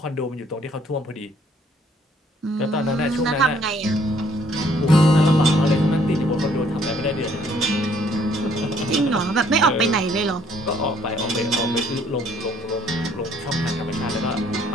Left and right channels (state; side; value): normal; both; correlation 0.63